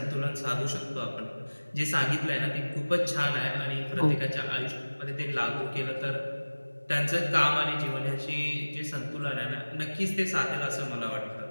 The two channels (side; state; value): both; inverted; correlation -1.00